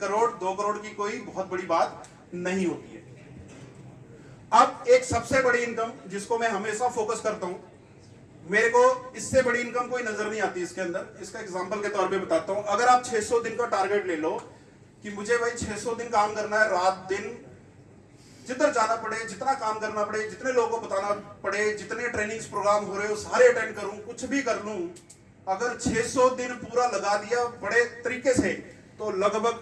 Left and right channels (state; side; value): identical; both; correlation 1.00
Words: 2 करोड़ की कोई बहुत बड़ी बात नहीं होती है। अब एक सबसे बड़ी इनकम जिसको मैं हमेशा फोकस करता हूं, मेरे को इससे बड़ी इनकम कोई नजर नहीं आती इसके अंदर। इसका एग्जांपल के तौर पे बताता हूं। अगर आप 600 दिन का टारगेट ले लो कि मुझे भाई 600 दिन काम करना है, रात दिन जिधर जाना पड़े, जितना काम करना पड़े, जितने लोगों को बताना पड़े, जितने ट्रेनिंग्स प्रोग्राम हो रहे हो सारे अटेंड करूं, कुछ भी कर लूं, अगर 600 दिन पूरा लगा दिया बड़े तरीके से तो लगभग